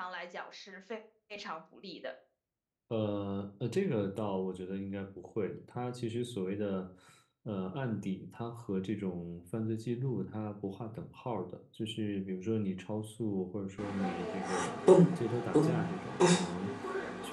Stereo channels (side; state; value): both; identical; correlation 1.00